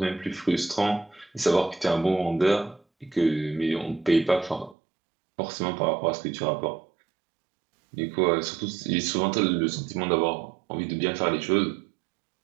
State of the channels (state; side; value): drops out; left; at 4.8 s